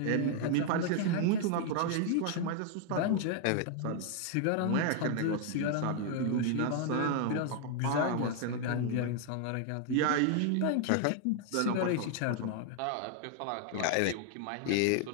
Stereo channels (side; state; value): both; different; correlation 0.00